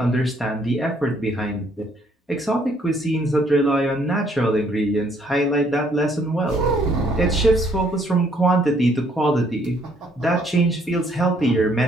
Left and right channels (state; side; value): normal; both; correlation 0.66